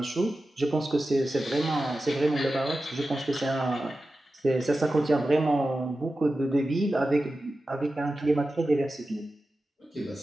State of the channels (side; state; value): both; normal; correlation 0.93